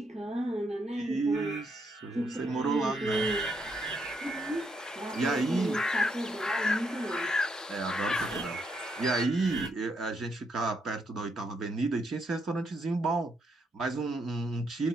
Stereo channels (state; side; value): normal; both; correlation 0.77